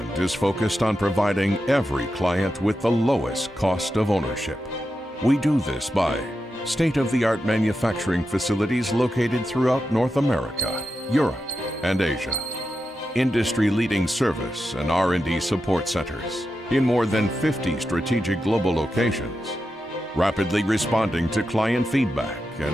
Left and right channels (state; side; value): normal; both; correlation 0.89